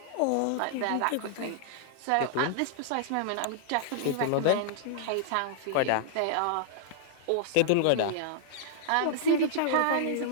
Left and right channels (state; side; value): different; both; correlation -0.01